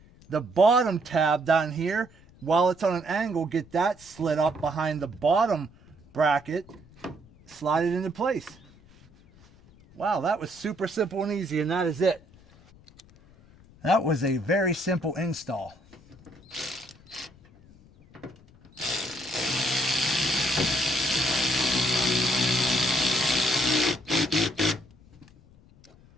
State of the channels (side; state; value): left; noise; rumble, 26 dB below the sound